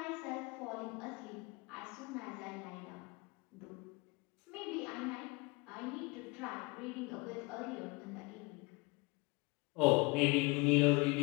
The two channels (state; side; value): quieter; right; 26.3 dB